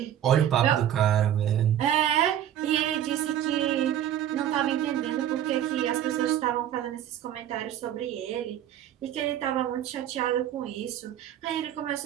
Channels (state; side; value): quieter; left; 10.9 dB